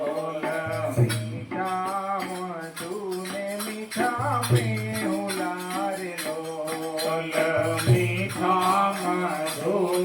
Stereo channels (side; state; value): both; identical; correlation 1.00